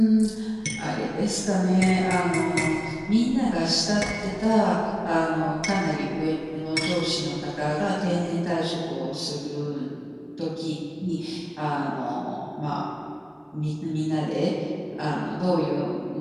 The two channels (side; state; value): both; identical; correlation 1.00